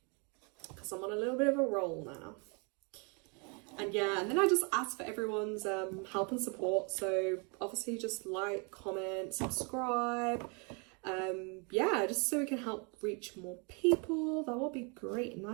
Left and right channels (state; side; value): quieter; left; 34.0 dB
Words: because I'm on a little bit of a roll now. And yeah, and then I just ask for everyone's help and support. So obviously just like, comment, subscribe. Yeah, just so we can help reach more people. That will be great.